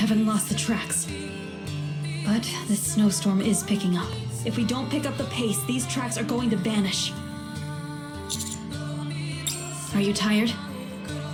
lost the tracks. But this snowstorm is picking up. If we don't pick up the pace, these tracks are going to vanish. Are you tired?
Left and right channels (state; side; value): identical; both; correlation 1.00